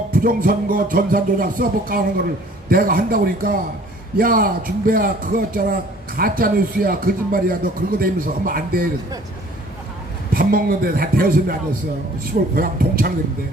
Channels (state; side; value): normal; both; correlation 0.53